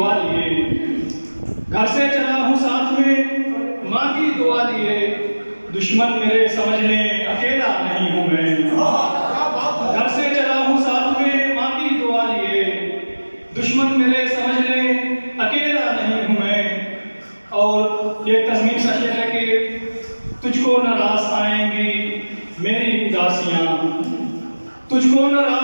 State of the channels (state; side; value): inverted; both; correlation -1.00